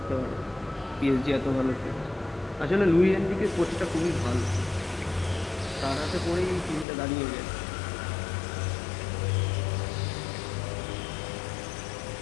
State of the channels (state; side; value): drops out; right; at 6.9 s